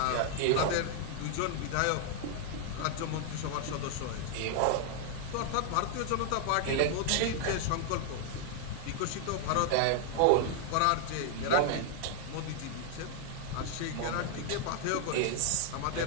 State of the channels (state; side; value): different; both; correlation 0.00